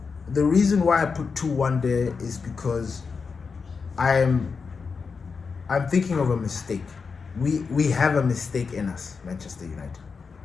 reason why I put 2-1 there is because I'm thinking of a mistake. We have a mistake in us, Manchester United.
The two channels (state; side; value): quieter; right; 5.2 dB